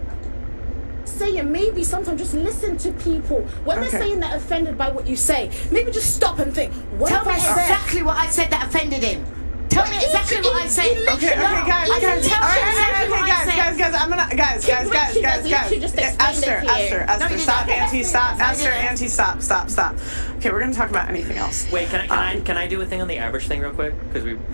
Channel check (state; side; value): inverted; both; correlation -1.00